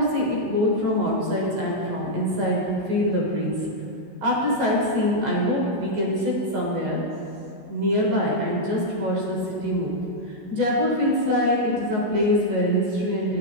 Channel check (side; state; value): left; late; 16 ms